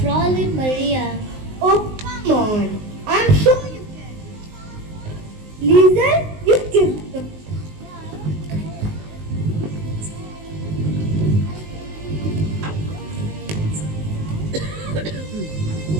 Maria. Oh, come on. I'm sure you can. Lisa, you give the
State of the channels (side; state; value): left; late; 19 ms